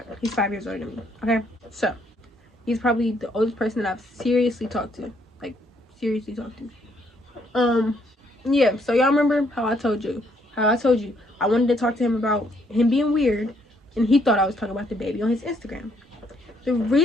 He's 5 years older than me. Okay? So, he's probably the oldest person that I've seriously talked to. Like, seriously talked to. Yeah, so y'all remember how I told you I wanted to talk to him about him being weird, and he thought I was talking about the baby on his Instagram. The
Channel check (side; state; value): both; normal; correlation 0.70